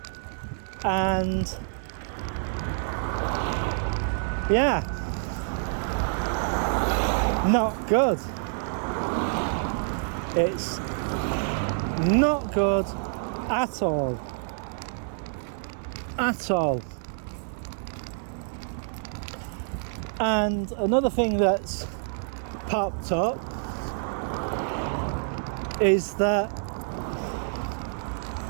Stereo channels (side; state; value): left; silent; digital silence